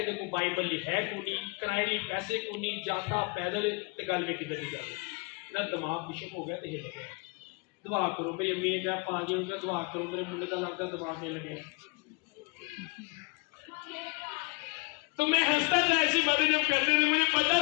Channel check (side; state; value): right; quieter; 30.3 dB